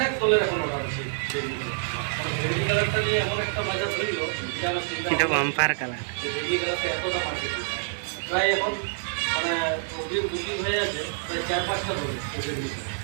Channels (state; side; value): silent; left; digital silence